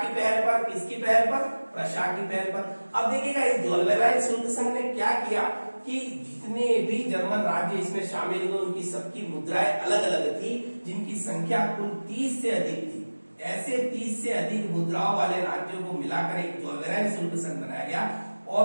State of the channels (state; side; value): inverted; both; correlation -1.00